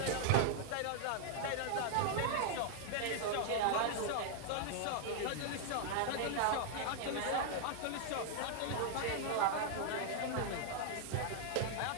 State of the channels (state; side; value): different; both; correlation 0.00